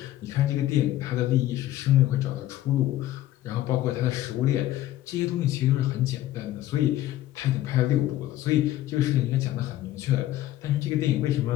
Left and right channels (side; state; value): right; quieter; 14.3 dB